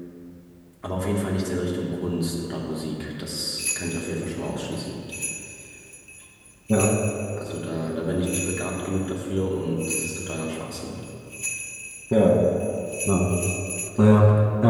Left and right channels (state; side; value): identical; both; correlation 1.00